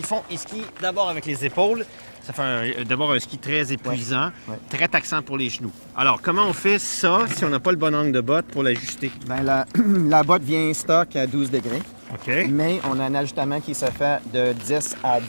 font? Ils skient d'abord avec les épaules. Ça fait d'abord un ski très épuisant, très taxant pour les genoux. Alors, comment on fait ça si on n'a pas le bon angle de botte pour l'ajuster? Bien, la botte vient stock à 12 degrés. OK. Mais on a un ajustement qui se fait de 10 à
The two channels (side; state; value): both; inverted; correlation -1.00